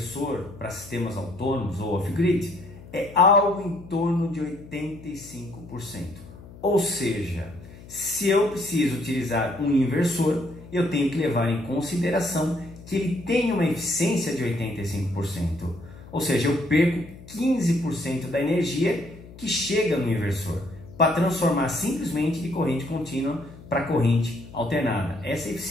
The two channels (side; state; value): left; noise; hum, 18 dB below the sound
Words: para sistemas autônomos ou off-grid é algo em torno de 85%. Ou seja, se eu preciso utilizar um inversor, eu tenho que levar em consideração que ele tem uma eficiência de 85%. Ou seja, eu perco 15% da energia que chega no inversor para transformar simplesmente de corrente contínua para corrente alternada. Essa é a